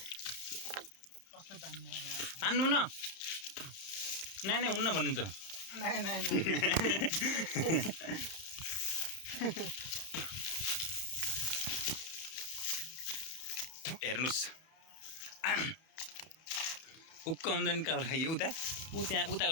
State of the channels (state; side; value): late; right; 31 ms